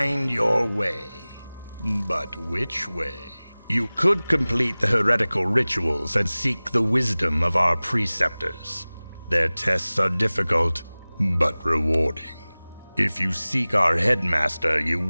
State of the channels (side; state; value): both; inverted; correlation -0.99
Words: your way. But which way? You could complete the heretical rituals and seek the wisdom of our preceptors. Their tests are difficult, but rewarding. If you seek our headmaster, you